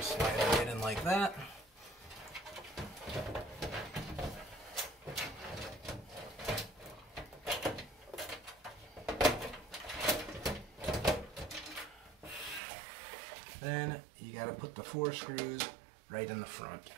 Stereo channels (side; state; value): left; drops out; at 12.6 s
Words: slide it right in like that. Then you got to put the 4 screws right in the front.